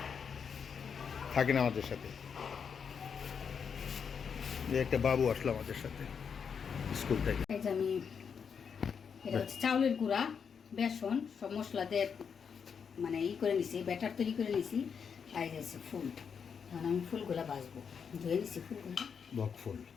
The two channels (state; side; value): quieter; right; 6.6 dB